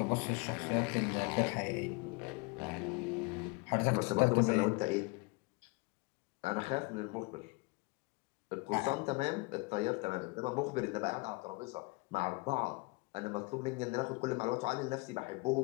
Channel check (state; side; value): quieter; right; 27.1 dB